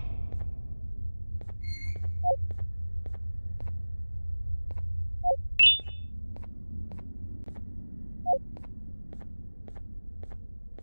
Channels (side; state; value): both; inverted; correlation -1.00